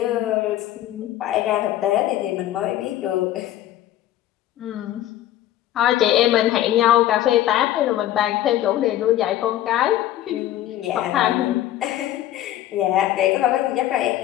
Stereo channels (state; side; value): quieter; right; 13.2 dB